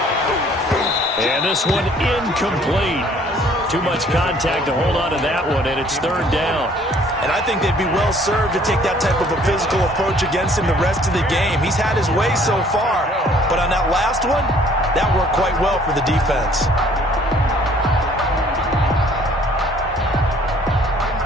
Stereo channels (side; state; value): both; normal; correlation 0.58